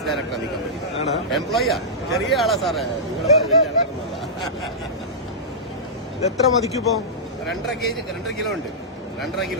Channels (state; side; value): normal; both; correlation -0.14